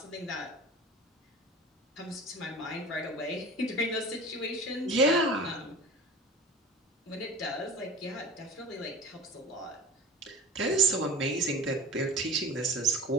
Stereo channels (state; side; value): normal; both; correlation 0.36